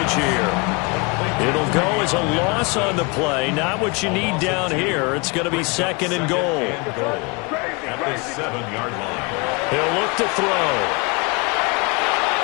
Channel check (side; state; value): right; quieter; 29.3 dB